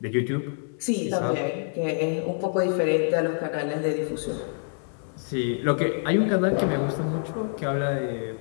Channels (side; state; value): right; silent; 61 dB below the other